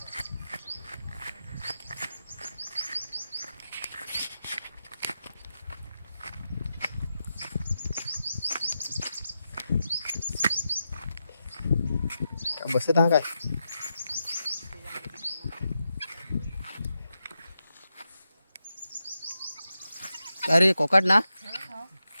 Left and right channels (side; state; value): both; inverted; correlation -0.88